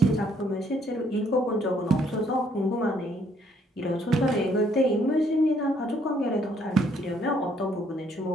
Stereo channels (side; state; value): both; normal; correlation 0.67